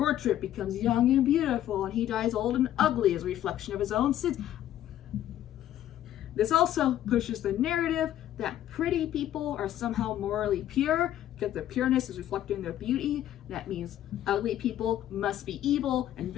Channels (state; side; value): quieter; right; 12.1 dB